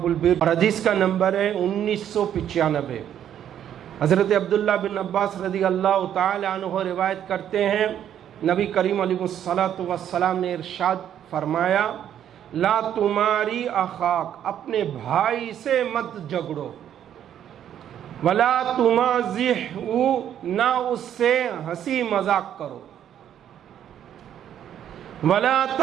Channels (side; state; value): left; quieter; 10.1 dB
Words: البر اور حدیث کا نمبر ہے 1995۔ حضرت عبداللہ بن عباس رضی اللہ تعالی عنہ روایت کرتے ہیں، نبی کریم علیہ الصلوۃ والسلام نے ارشاد فرمایا، لا تماری اخاک، اپنے بھائی سے مت جھگڑو، ولا تمازحہ، نہ اس سے ہنسی مذاق کرو، ولا